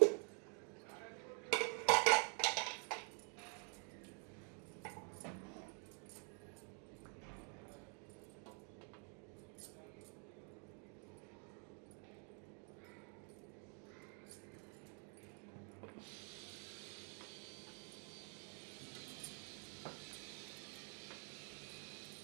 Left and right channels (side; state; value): left; quieter; 39.8 dB